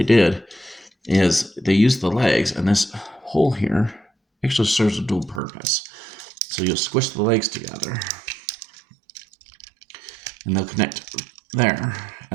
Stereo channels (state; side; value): drops out; left; at 5.4 s